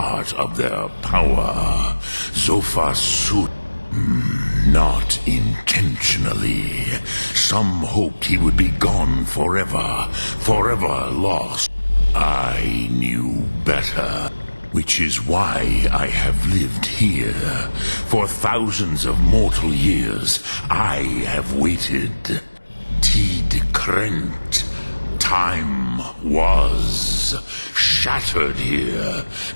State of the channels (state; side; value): inverted; both; correlation -1.00